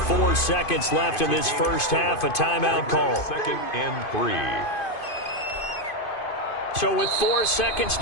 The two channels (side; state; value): right; late; 2.5 ms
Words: 4 seconds left in this first half, a timeout call. 2nd and 3. So with 4 seconds